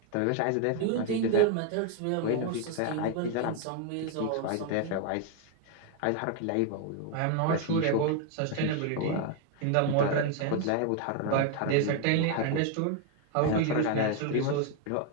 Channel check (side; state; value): both; different; correlation 0.01